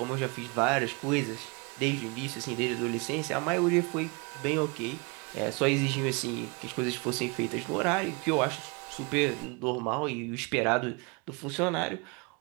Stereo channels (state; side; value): quieter; left; 30.1 dB